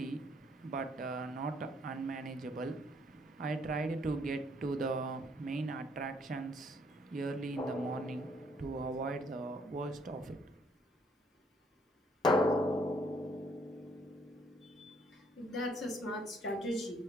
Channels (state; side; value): normal; both; correlation 0.67